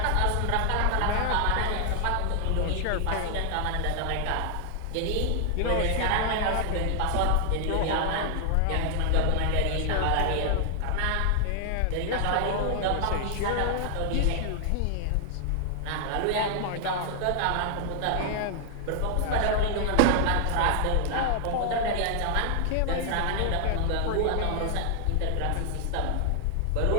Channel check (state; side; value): different; both; correlation 0.00